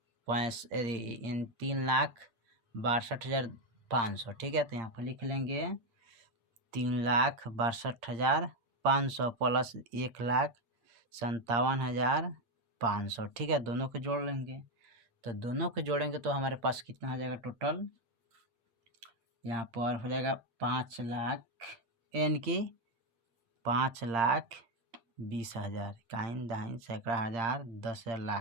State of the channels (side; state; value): left; late; 8.7 ms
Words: ठीक है। तो यहाँ पर लिख लेंगे 3,62,500 प्लस 1,57,500, ठीक है। दोनों को जोड़ लेंगे, तो दोनों को जोड़ेंगे तो हमारे पास कितना आ जाएगा टोटल, यहाँ पर हो जाएगा 5 लाख, यानी कि 5,20,000, काइन दहाइन सैकड़ा हजार 10